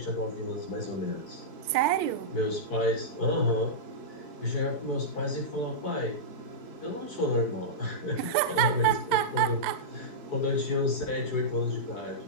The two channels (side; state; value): right; late; 4.6 ms